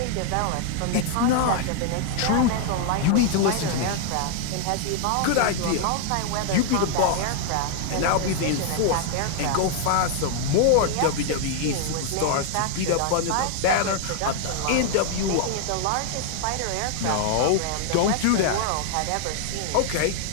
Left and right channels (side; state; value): both; different; correlation 0.00